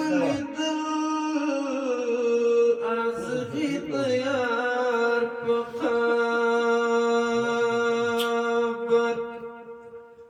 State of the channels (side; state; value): both; identical; correlation 1.00